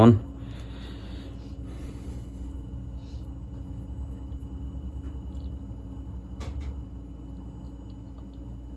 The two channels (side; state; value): both; identical; correlation 1.00